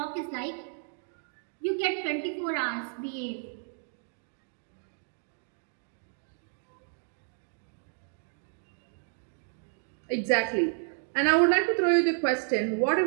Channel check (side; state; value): left; silent; 57 dB below the other